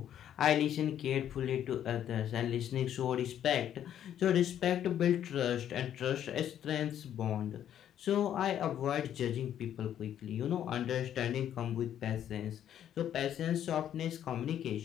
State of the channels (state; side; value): quieter; right; 10.3 dB